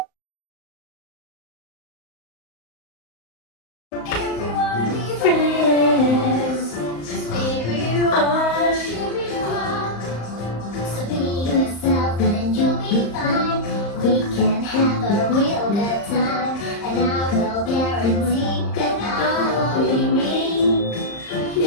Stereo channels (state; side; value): late; right; 35 ms